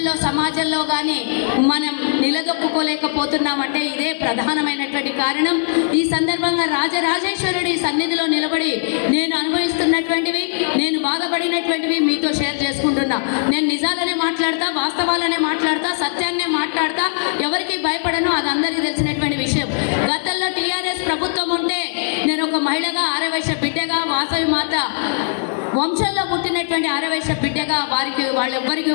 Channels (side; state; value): right; silent; digital silence